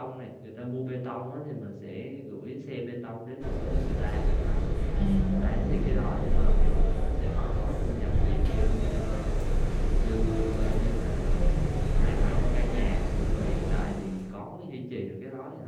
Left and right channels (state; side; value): identical; both; correlation 1.00